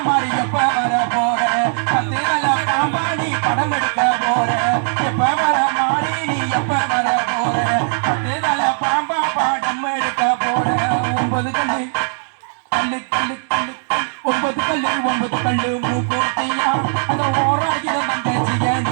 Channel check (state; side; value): silent; left; digital silence